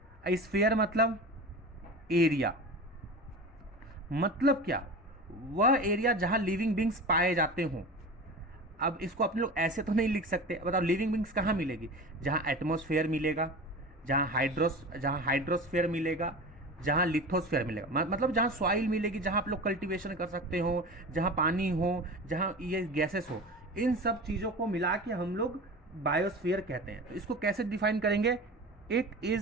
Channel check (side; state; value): both; normal; correlation 0.32